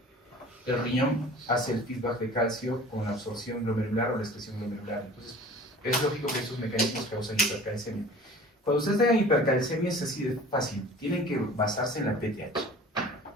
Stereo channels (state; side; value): normal; both; correlation 0.44